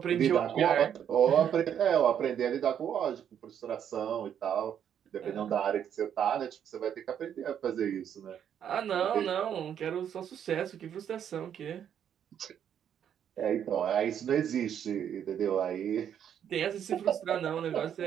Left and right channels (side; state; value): left; quieter; 9.1 dB